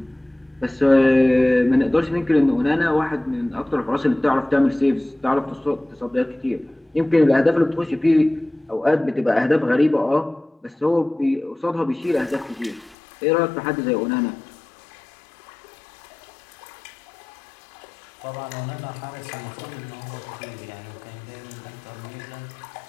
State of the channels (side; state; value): right; drops out; at 13.0 s